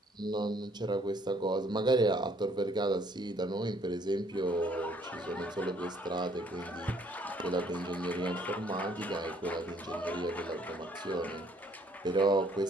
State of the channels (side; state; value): both; normal; correlation 0.64